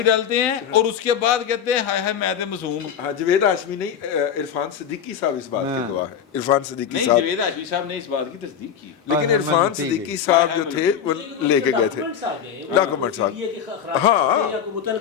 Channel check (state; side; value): quieter; right; 8.2 dB